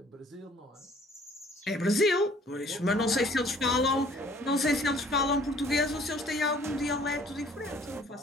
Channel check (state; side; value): normal; both; correlation 0.56